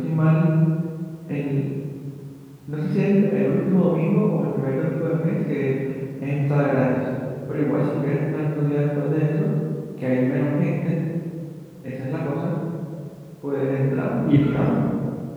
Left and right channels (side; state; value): both; identical; correlation 1.00